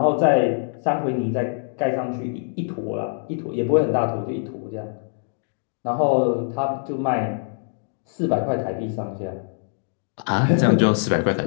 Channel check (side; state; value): right; silent; digital silence